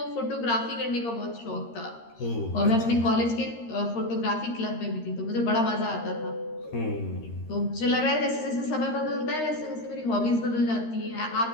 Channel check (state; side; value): late; right; 13 ms